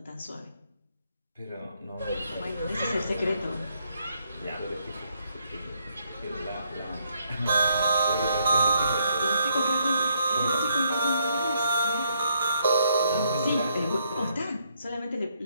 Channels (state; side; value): inverted; both; correlation -0.73